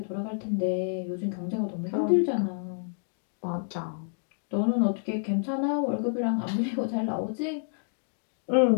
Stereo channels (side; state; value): right; silent; digital silence